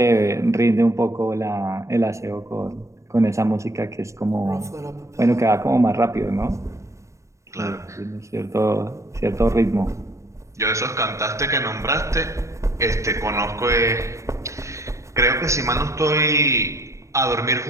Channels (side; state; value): left; late; 0.14 ms